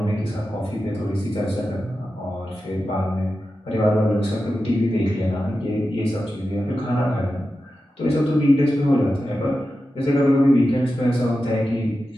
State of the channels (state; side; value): normal; both; correlation 0.92